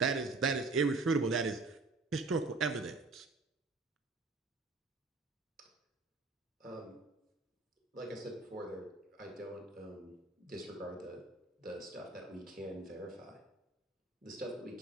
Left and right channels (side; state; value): left; quieter; 3.6 dB